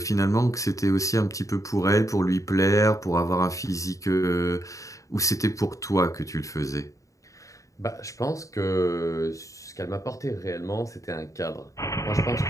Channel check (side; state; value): right; late; 0.16 ms